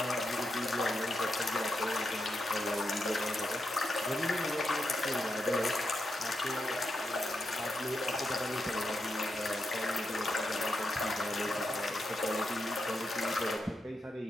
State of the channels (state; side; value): normal; both; correlation 0.85